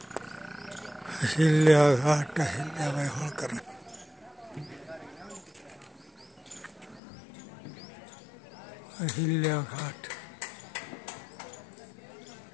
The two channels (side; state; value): right; drops out; at 7.0 s